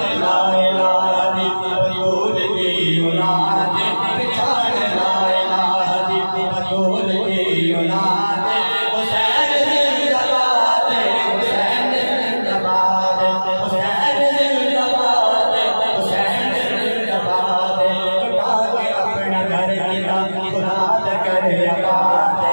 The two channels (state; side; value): inverted; both; correlation -1.00